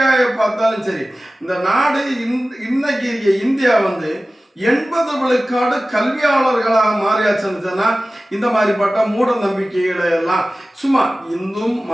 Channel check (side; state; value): both; normal; correlation 0.96